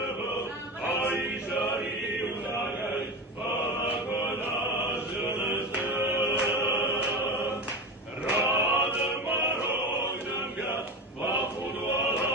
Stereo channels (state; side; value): normal; both; correlation 0.24